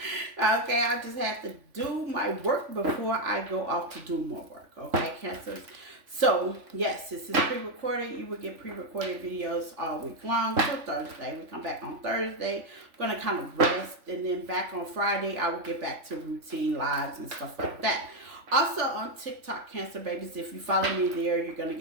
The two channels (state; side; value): late; left; 3.4 ms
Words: Okay, I just have to do my work before I go off to do more work. Okay, Cancers. So, yes, this is pre-recorded. You will get pre-recorded videos all week long till Thursday. We come back on Thursday. I'm going to kind of rest. And then back on Friday, I will get back to routine lives and stuff like that. Also on TikTok, Cancer babies, if you follow me there, you're going to